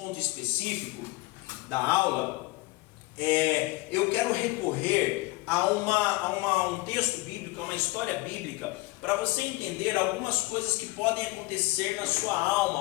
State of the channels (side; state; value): right; quieter; 21.7 dB